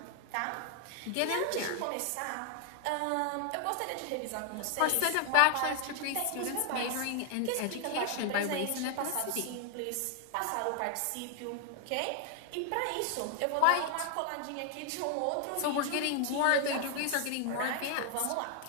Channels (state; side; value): different; both; correlation 0.00